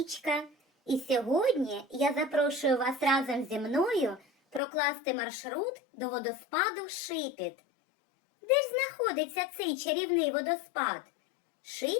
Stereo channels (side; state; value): right; drops out; at 4.6 s